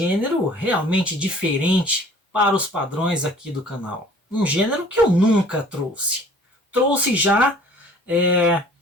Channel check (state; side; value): normal; both; correlation 0.51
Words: realmente diferente para os padrões aqui do canal. Um gênero que eu nunca trouxe. Trouxe já